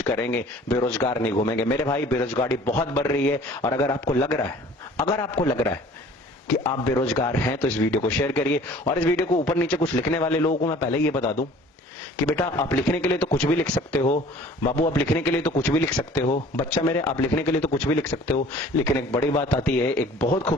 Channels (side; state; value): both; normal; correlation 0.49